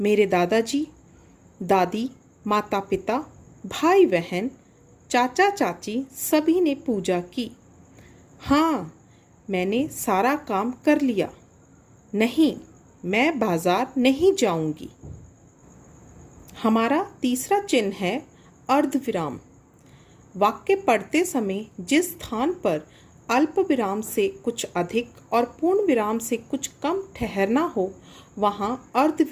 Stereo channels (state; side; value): identical; both; correlation 1.00